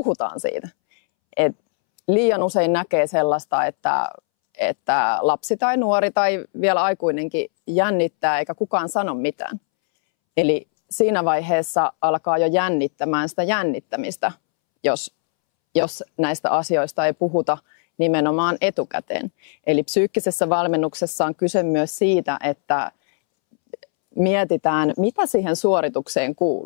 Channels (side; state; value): right; silent; 65 dB below the other